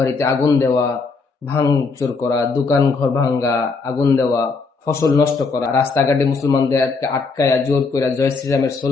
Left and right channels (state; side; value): quieter; right; 4.4 dB